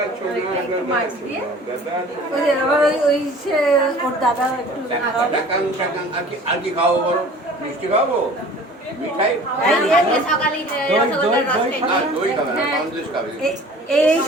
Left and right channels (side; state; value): both; normal; correlation 0.46